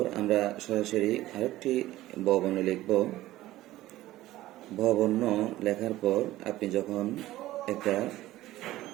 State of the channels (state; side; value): quieter; left; 15.8 dB